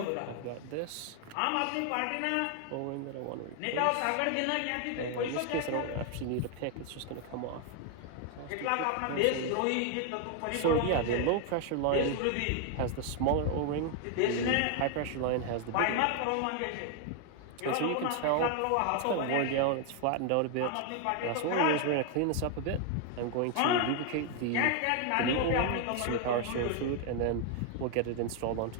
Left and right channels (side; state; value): both; different; correlation 0.00